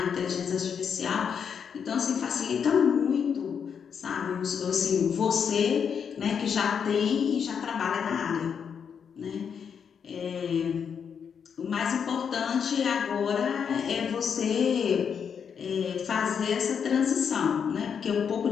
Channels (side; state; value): right; quieter; 7.1 dB